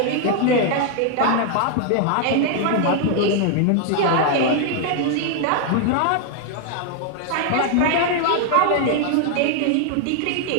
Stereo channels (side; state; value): both; different; correlation 0.00